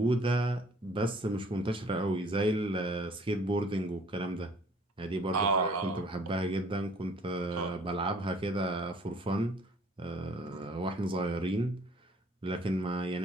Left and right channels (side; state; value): both; normal; correlation 0.56